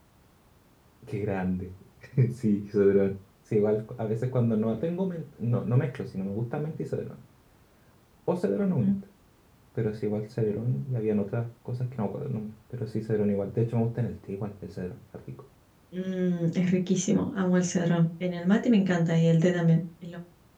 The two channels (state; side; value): identical; both; correlation 1.00